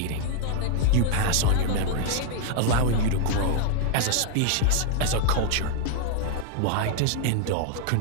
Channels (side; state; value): both; different; correlation 0.00